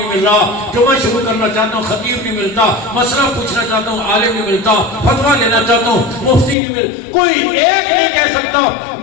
مل رہا، جمعہ شروع کرنا چاہتا ہوں خطیب نہیں ملتا، مسئلہ پوچھنا چاہتا ہوں عالم نہیں ملتا، فتویٰ لینا چاہتا ہوں مفتی نہیں مل، کوئی ایک نہیں کہہ سکتا.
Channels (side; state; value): right; drops out; at 6.6 s